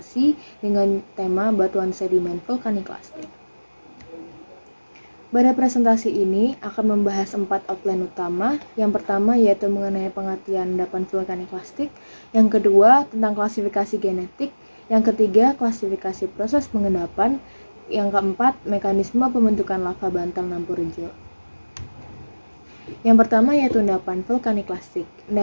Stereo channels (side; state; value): both; inverted; correlation -1.00